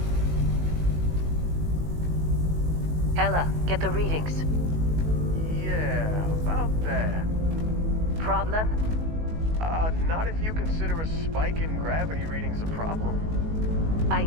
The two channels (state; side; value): late; left; 19 ms